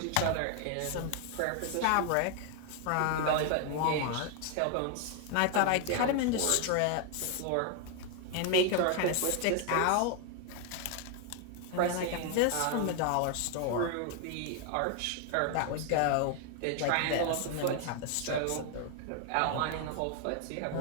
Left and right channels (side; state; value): both; different; correlation 0.00